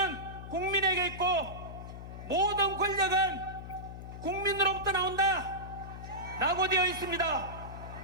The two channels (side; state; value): left; noise; hum, 11 dB below the sound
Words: 국민에게 있고 모든 권력은 국민으로부터 나온다 라고 되어 있습니다.